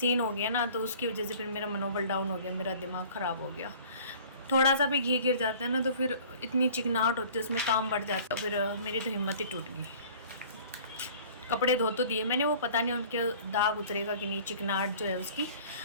हो गया ना, तो उसकी वजह से फिर मेरा मनोबल डाउन हो गया, मेरा दिमाग ख़राब हो गया। थोड़ा सा भी घी गिर जाता है ना तो फिर इतनी चिकनाहट होती है, उसमें काम बढ़ जाता है, फिर मेरी तो हिम्मत ही टूट गई। कपड़े धो तो दिए मैंने, वो पता नहीं उनके दाग उतरेगा कि नहीं, चिकनाहट जो है उसकी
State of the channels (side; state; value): both; inverted; correlation -0.48